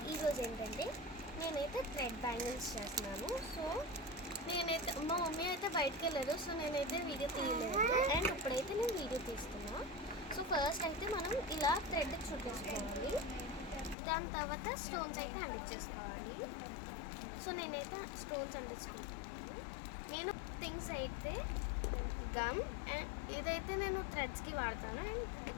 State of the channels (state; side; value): drops out; right; at 14.0 s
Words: ఈరోజు ఏంటంటే నేనైతే థ్రెడ్ బ్యాంగిల్స్ చేస్తున్నాను. సో నేనైతే మా మమ్మీ అయితే బయటకు వెళ్ళారు, సో నేనైతే వీడియో తీయలేదు. అండ్ ఇప్పుడైతే నేను వీడియో తీస్తున్నా. సో ఫస్ట్ అయితే మనం ఇలా థ్రెడ్ చుట్టేసుకోవాలి, దాని తర్వాత స్టోన్స్ అయితే అంటించేసుకోవాలి. సో నేనైతే స్టోన్స్ అంటించుకుంటాను. నేను థింగ్స్ అయితే గమ్ అండ్ ఇదైతే నేను థ్రెడ్స్కి వాడతాను, అండ్